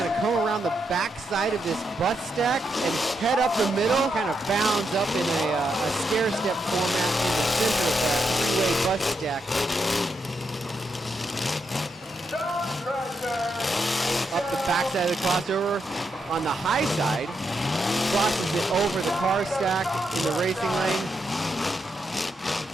to come around the backside of this bus stack and head up the middle. Kind of bounds up in a stair-step format in the center of that 3-way bus stack. Up the backside of the crossover on the high side. Crosses it over the car stack in the racing lane.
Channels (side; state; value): both; normal; correlation 0.82